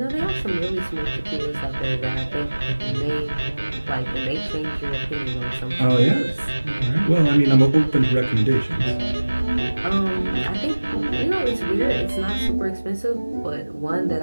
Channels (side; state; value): both; inverted; correlation -1.00